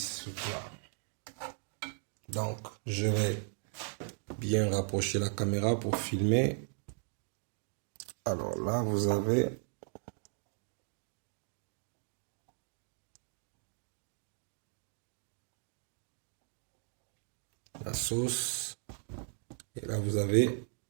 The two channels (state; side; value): silent; left; 53 dB below the other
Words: ce plat. Donc, je vais bien rapprocher la caméra pour filmer. Alors là, vous avez la sauce. Et là, vous avez